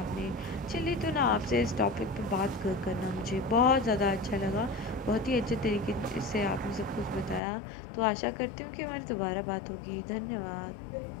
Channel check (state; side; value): drops out; right; at 7.4 s